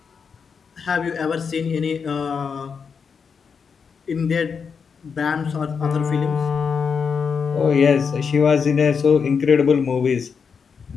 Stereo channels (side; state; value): right; quieter; 6.0 dB